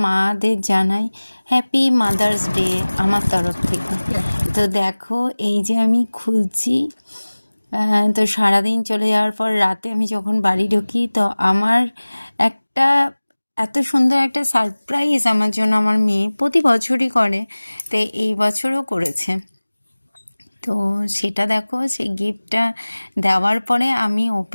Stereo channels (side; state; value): both; inverted; correlation -1.00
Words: মাদের জানাই হ্যাপি মাদার্স ডে আমার তরফ থেকে। তো দেখো, এই যে আমি খুলছি। তো সারাদিন চলে যাওয়ার পর রাতে আমি যখন বাড়ি ঢুকি, তো আমার একটা এত সুন্দর একটা সারপ্রাইজ আমার জন্য আমার মেয়ে প্রতি বছরই করে, তো এই বছরও করেছে। তো সেটা দেখো, সেই গিফটটা দেওয়ার পরে আমি